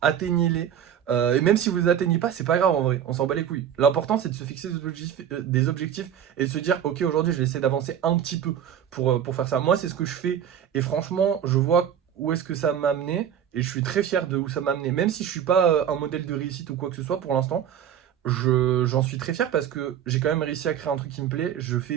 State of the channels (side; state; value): left; quieter; 9.4 dB